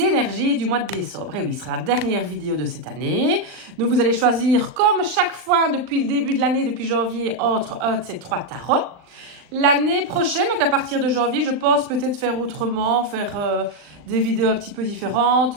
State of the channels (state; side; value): late; left; 39 ms